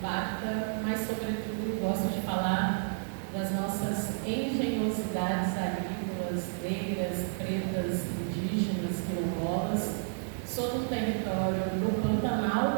mas sobretudo gosto de falar das nossas engenhosidades agrícolas, negras, pretas, indígenas, quilombolas. Sou do território do Pantanal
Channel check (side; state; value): left; silent; digital silence